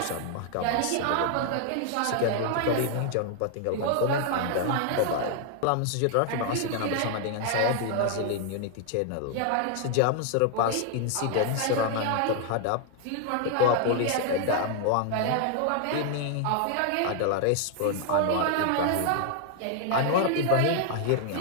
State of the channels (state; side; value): different; both; correlation 0.00